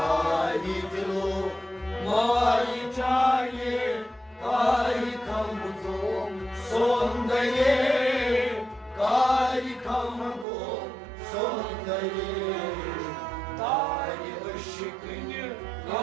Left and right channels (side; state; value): left; drops out; at 10.5 s